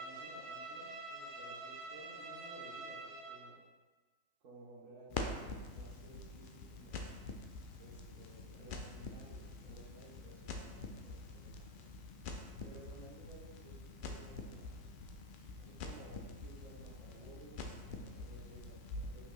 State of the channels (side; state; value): left; late; 2.4 ms